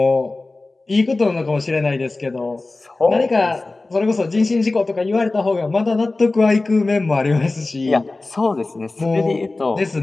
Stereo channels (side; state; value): right; quieter; 3.2 dB